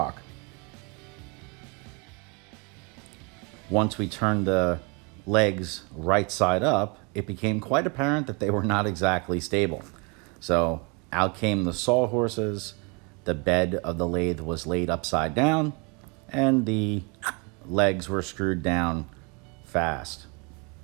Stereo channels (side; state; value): left; quieter; 31.5 dB